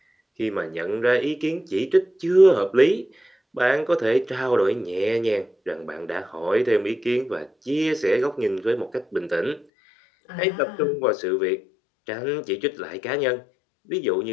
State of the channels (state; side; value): drops out; right; at 9.7 s